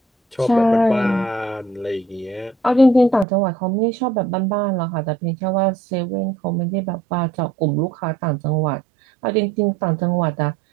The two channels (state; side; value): drops out; left; at 3.2 s